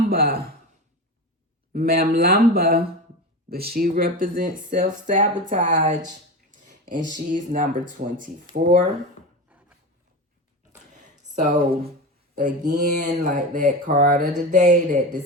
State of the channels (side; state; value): both; normal; correlation 0.24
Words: but she represents self-sabotage, and she's number 24. So again, like that card of the day, that